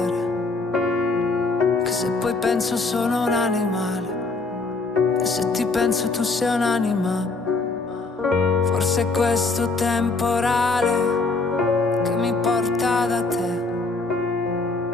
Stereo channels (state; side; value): quieter; right; 3.7 dB